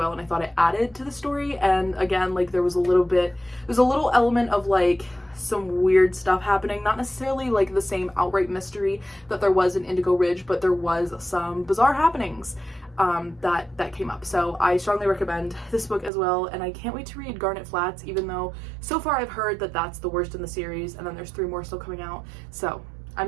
and I thought it added to the story. And again, like there was a little element of like some weird stuff happening, not necessarily like the same outright mystery that there was in Indigo Ridge, but there was some bizarre happenings that came up. So I strongly recommend this book as well, and I can't wait to read Garnet Flats, even though so far I've heard that that's the worst in the series, and then there's 3 more still coming out. So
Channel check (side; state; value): left; drops out; at 16.1 s